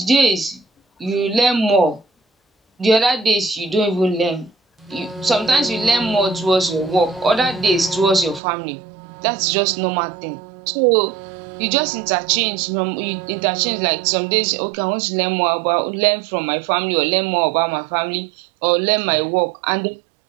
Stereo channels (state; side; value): drops out; left; at 8.4 s